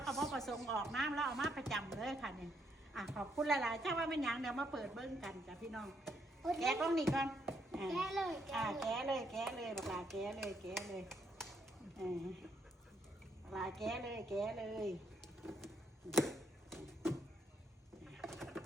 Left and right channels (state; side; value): normal; both; correlation 0.74